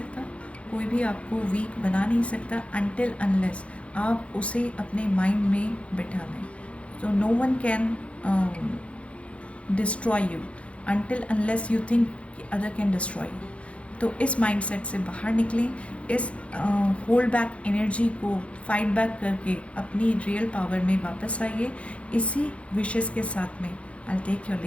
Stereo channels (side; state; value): right; late; 0.062 ms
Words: कोई भी आपको वीक बना नहीं सकता अनटिल अनलेस आप उसे अपने माइंड में बिठा लें। तो no one can destroy you until unless you think other can destroy you. तो इस माइंडसेट से बाहर निकलें, इस होल्ड बैक एनर्जी को फाइट बैक करके अपनी रियल पावर में वापस आइए। इसी विशेष के साथ में I take your